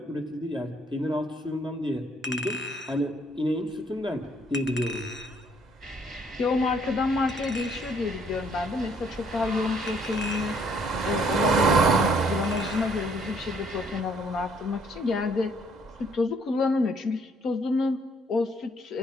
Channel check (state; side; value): normal; both; correlation 0.65